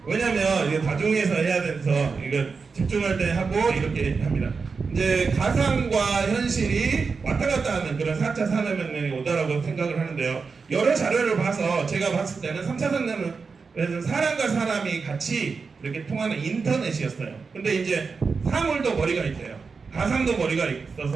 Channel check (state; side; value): quieter; left; 4.9 dB